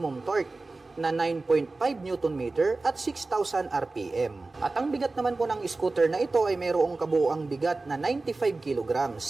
torque na 9.5 Nm at 6,000 RPM. At ang bigat naman po ng scooter na ito ay mayroong kabuuang bigat na 95 kg.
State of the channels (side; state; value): left; quieter; 3.4 dB